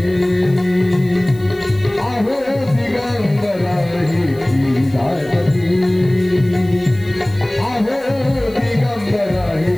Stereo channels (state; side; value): noise; left; hiss, 26 dB below the sound